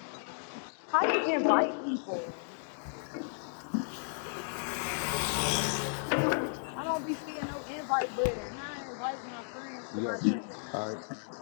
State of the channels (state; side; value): silent; right; digital silence